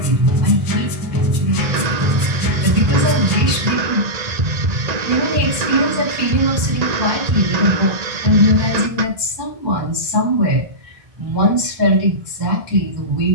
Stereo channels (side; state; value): left; late; 1.9 ms